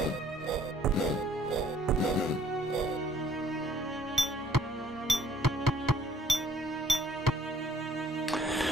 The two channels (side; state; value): both; normal; correlation 0.60